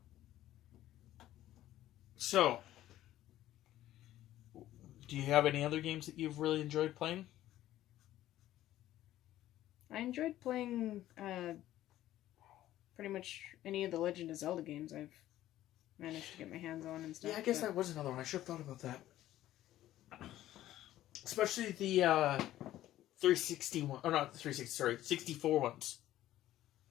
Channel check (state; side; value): quieter; right; 13.8 dB